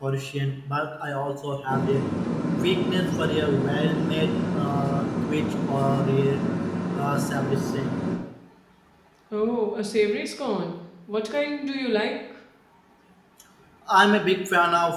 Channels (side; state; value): both; identical; correlation 1.00